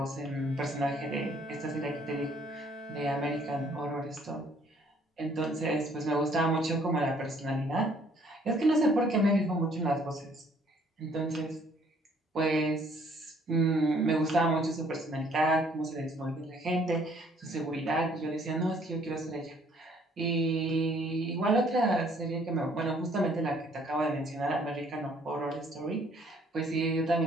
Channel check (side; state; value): both; normal; correlation 0.62